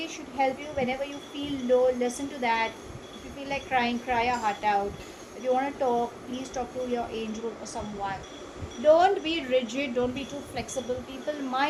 should help you whenever you feel low. Listen to that. If you feel like crying, cry your heart out. If you want to talk, please talk to your angel or someone. Don't be rigid, don't be too flexible. People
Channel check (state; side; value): identical; both; correlation 1.00